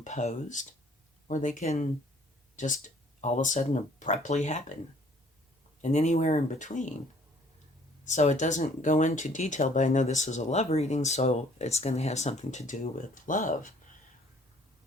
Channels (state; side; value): normal; both; correlation 0.57